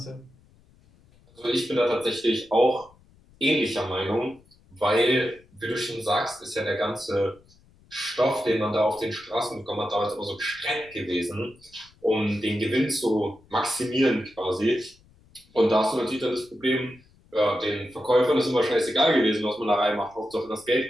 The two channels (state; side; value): noise; left; rumble, 29 dB below the sound